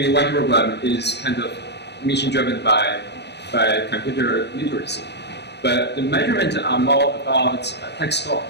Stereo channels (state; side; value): late; right; 0.50 ms